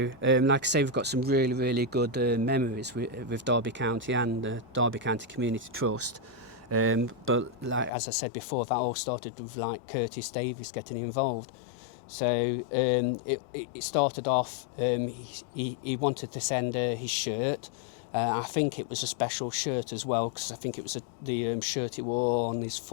like I say, we've got some really, really good memories with Derby County and the Derby County Community Trust. But like as I said before, that all started with like Curtis Davies getting involved. So it started off, he wanted to send his shirt. I think it was a special shirt as well, because I think it was the shirt he wore on his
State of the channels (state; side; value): drops out; right; at 7.9 s